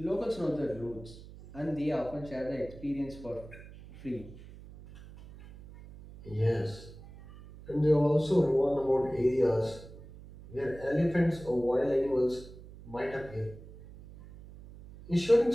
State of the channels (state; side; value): noise; right; hum, 17 dB below the sound